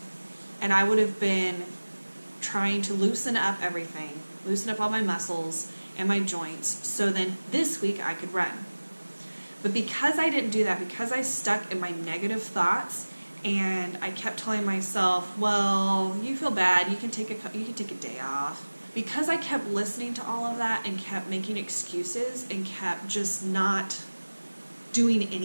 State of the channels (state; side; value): inverted; both; correlation -1.00